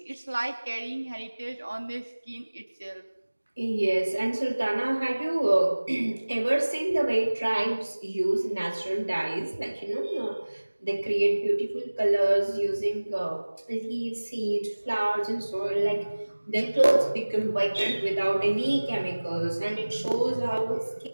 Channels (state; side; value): inverted; both; correlation -1.00